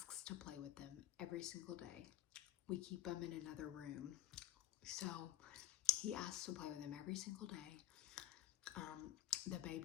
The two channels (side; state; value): right; quieter; 13.7 dB